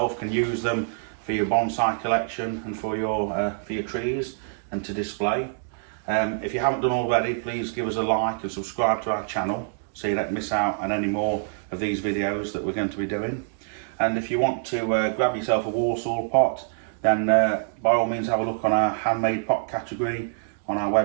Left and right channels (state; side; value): silent; left; digital silence